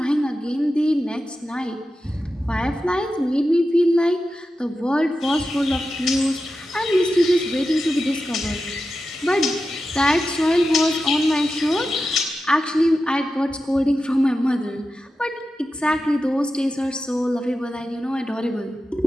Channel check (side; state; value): both; normal; correlation 0.91